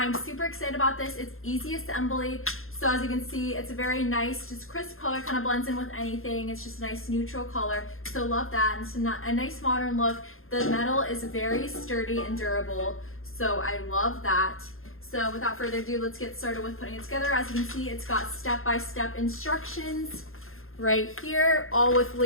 super excited about this. It's easy assembly, so as you can see, it's a very nice, just crisp color, kind of blends in with anything. It's just a nice neutral color, so love that. And it's a nice modern look. The metal is very sturdy and durable, so I love that. So without further ado, let's get started with putting it together. As you can see, it's got step-by-step instructions right here, all with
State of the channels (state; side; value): late; right; 0.61 ms